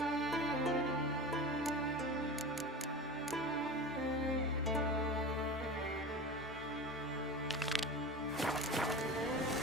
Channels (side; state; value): both; normal; correlation 0.31